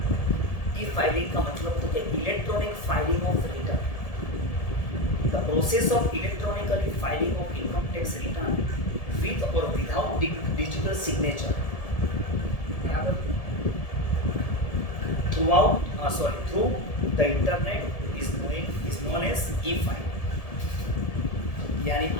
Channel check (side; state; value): right; late; 1.7 ms